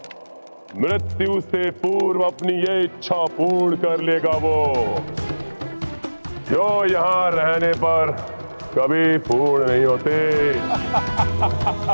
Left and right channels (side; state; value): both; inverted; correlation -1.00